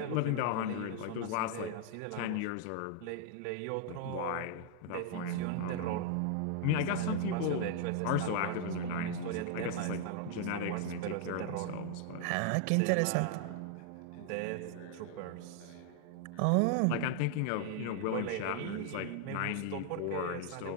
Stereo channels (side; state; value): both; different; correlation 0.00